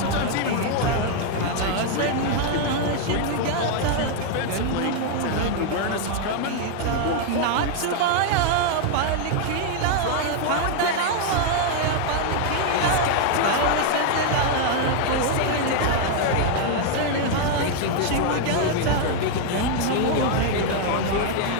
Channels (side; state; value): both; different; correlation 0.00